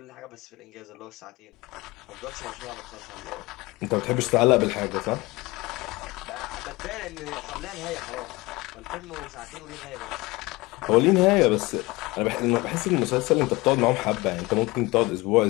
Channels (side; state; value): right; quieter; 22.2 dB